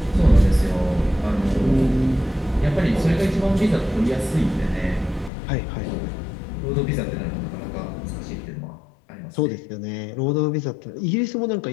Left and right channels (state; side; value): drops out; right; at 5.3 s